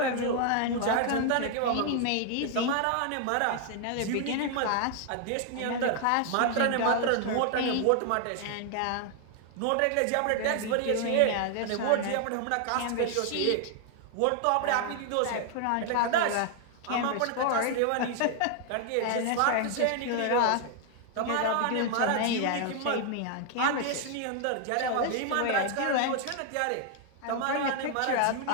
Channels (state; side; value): different; both; correlation 0.00